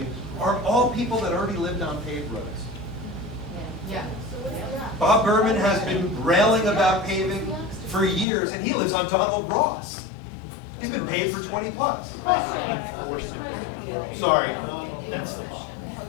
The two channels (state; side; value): drops out; right; at 8.2 s